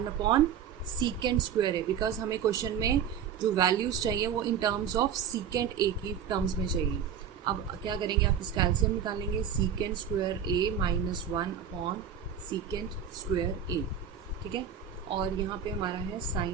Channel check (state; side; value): quieter; left; 8.2 dB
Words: upon secant square A, because हमें क्वेश्चन में जो वैल्यूज चाहिए वो इन टर्म्स ऑफ सीकेंट ए की टर्म्स में चाहिए. अब क्या करेंगे, आप इसका एलसीएम निकालेंगे. Secant square A minus 1 upon secant square ए. ठीक है, और यहाँ पे हमारा है